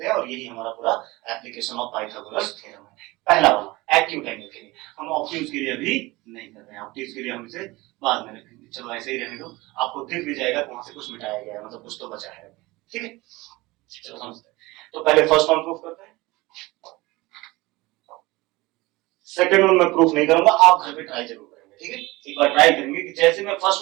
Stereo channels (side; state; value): left; quieter; 21.3 dB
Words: हैं, और यही हमारा पूरा एप्लीकेशन ऑफ पाइथागोरस थ्योरम है। पहला वाला एक्यूट एंगल के लिए, हम ऑब्ट्यूज के लिए अभी नहीं कर रहे हैं, ऑब्ट्यूज के लिए हम इसे बाद में रखेंगे, चलो ऐसे ही रहने दो, आपको दिख भी जाएगा वहां से कुछ मिटाया गया है, मतलब कुछ तो बचा है, ठीक है, चलो समझते हैं। तो पहले फर्स्ट वन प्रूव करते हैं, सेकंड वन मैं प्रूफ नहीं करूंगा, आप घर पे ट्राई जरूर करेंगे, ठीक है, एक बार ट्राई करेंगे कि जैसे मैं फर्स्ट